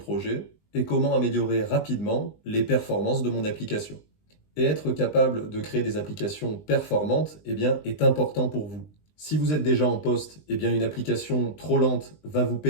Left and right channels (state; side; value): late; right; 20 ms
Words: Et comment améliorer rapidement les performances de mon application? Et être capable de créer des applications performantes est important pour vous. Si vous êtes déjà en poste, une application trop lente va vous